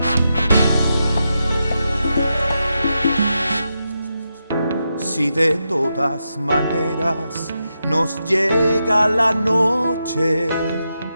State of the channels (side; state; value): both; inverted; correlation -0.86